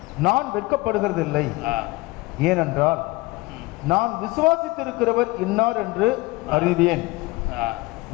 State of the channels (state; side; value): quieter; right; 21.4 dB